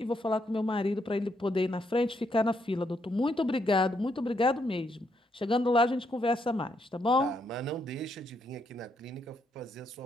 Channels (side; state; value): both; normal; correlation 0.76